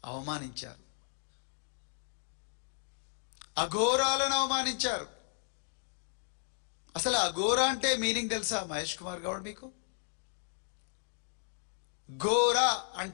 అవమానించారు. అఘోరాలను అవమానించారు. అసలు అఘోర అంటే మీనింగ్ తెలుసా మహేష్ కుమార్ గౌడ్ మీకు? ఘోర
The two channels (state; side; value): silent; right; digital silence